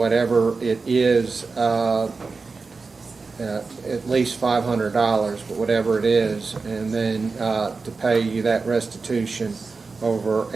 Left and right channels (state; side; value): quieter; left; 4.3 dB